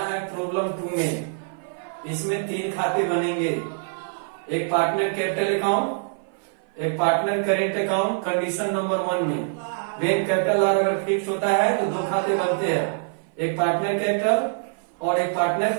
है प्रॉब्लम 2 में। इसमें 3 खाते बनेंगे, एक पार्टनर कैपिटल अकाउंट, एक partner current account. Condition number 1 में वेन कैपिटल अगर फिक्स होता है तो 2 खाते बनते हैं, एक पार्टनर कैपिटल और एक पार्टनर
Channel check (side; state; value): left; silent; 56 dB below the other